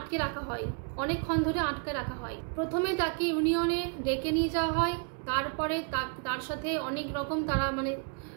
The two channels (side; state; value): left; quieter; 38.0 dB